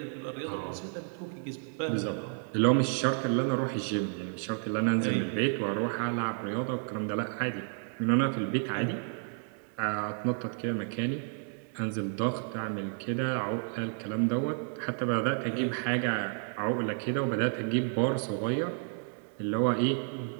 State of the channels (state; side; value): silent; left; 57 dB below the other